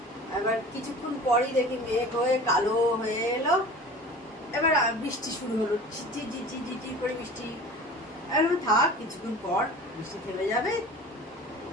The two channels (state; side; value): normal; both; correlation 0.40